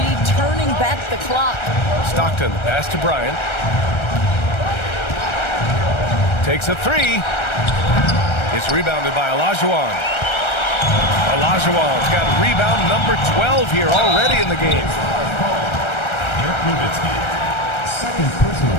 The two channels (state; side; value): late; right; 1.3 ms